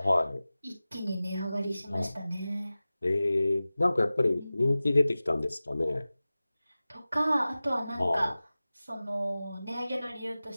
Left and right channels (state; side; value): inverted; both; correlation -0.97